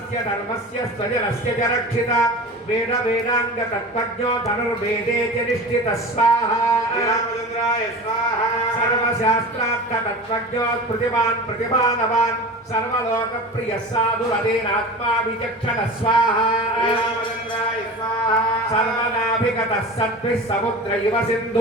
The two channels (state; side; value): normal; both; correlation 0.33